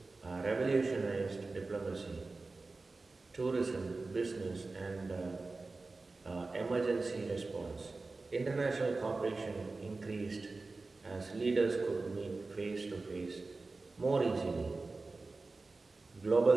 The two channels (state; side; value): quieter; left; 3.6 dB